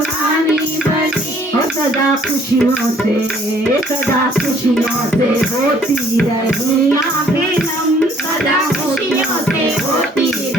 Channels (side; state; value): both; normal; correlation 0.60